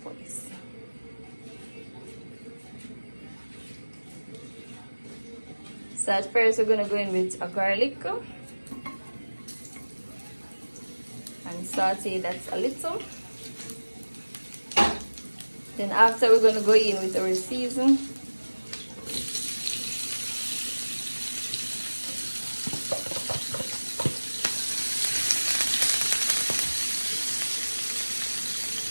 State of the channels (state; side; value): inverted; both; correlation -1.00